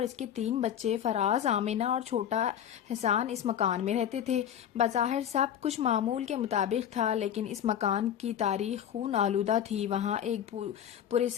اس کے 3 بچے فراز، آمینہ اور چھوٹا حسان اس مکان میں رہتے تھے۔ بظاہر سب کچھ معمول کے مطابق تھا، لیکن اس مکان کی تاریخ خون آلودہ تھی۔ وہاں ایک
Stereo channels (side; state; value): right; quieter; 9.6 dB